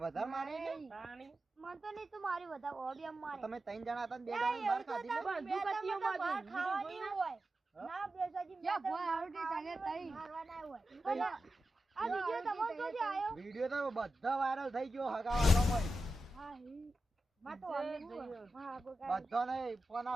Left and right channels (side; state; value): both; normal; correlation 0.91